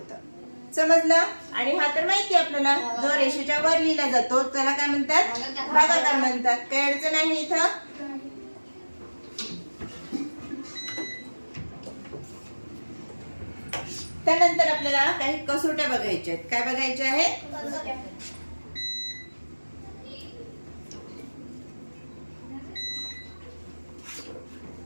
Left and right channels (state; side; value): inverted; both; correlation -1.00